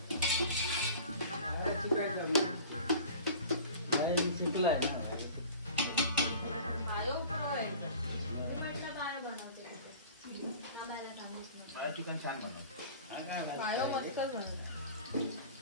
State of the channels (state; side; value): inverted; both; correlation -0.42